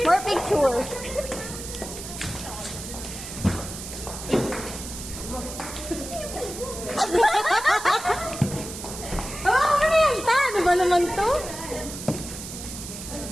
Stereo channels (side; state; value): right; noise; hiss, 10 dB below the sound